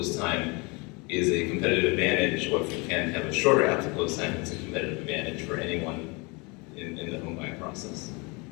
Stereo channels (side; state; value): right; quieter; 28.4 dB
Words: time is a competitive advantage, or if you can have a shorter app to close time, it's a competitive advantage for anyone in the home buying process.